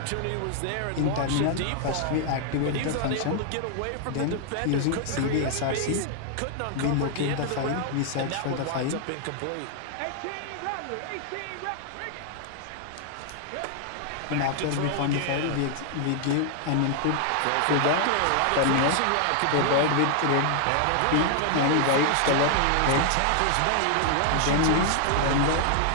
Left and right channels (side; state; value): both; different; correlation 0.00